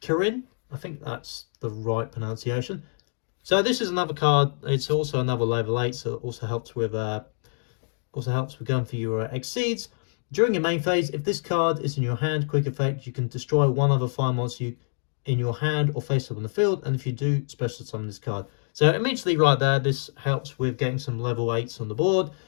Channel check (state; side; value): silent; right; digital silence